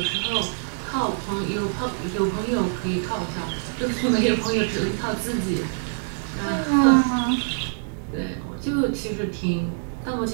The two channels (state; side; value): silent; left; digital silence